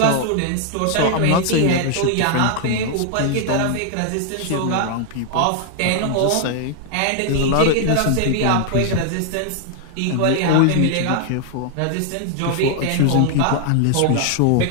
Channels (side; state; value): both; different; correlation 0.00